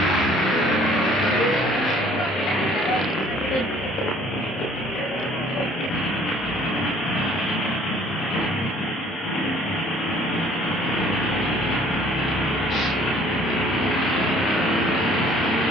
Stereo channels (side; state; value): both; normal; correlation 0.56